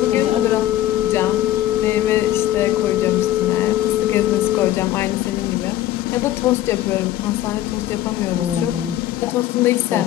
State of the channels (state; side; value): quieter; right; 13.5 dB